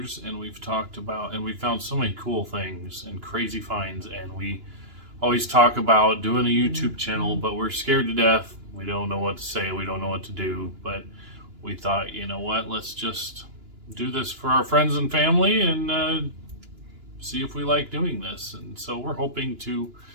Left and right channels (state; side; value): late; left; 2.9 ms